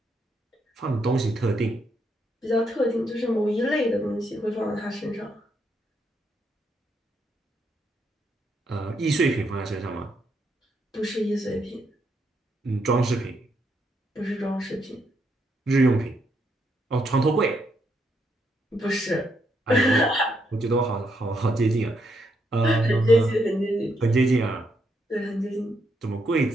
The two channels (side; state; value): both; normal; correlation 0.77